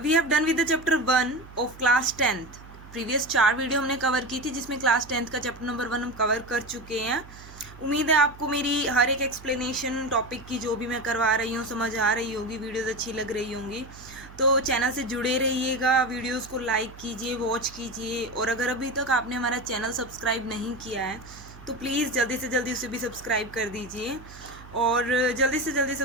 We have done with the chapter 1 of class 10th. Previous 4 video हमने cover की थी जिसमें class 10th का chapter number 1 हम cover कर चुके हैं. उम्मीद है आपको मेरी हर एक एक्सप्लेनेशन टॉपिक की जो भी मैं करवा रही हूँ समझ आ रही होगी, वीडियोस अच्छी लग रही होंगी. तो चैनल से जुड़े रहिएगा, वीडियोस को लाइक कीजिए, वॉच कीजिए. और अगर अभी तक आपने हमारा चैनल सब्सक्राइब नहीं किया है तो प्लीज़ जल्दी से जल्दी उसे भी सब्सक्राइब कर दीजिए और जल्दी से जल्दी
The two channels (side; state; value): right; noise; hum, 18 dB below the sound